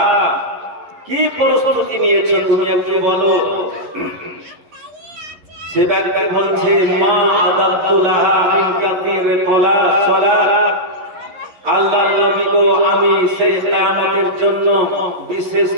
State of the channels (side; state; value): left; late; 11 ms